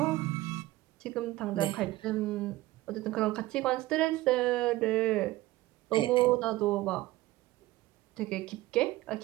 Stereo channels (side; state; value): left; quieter; 17.7 dB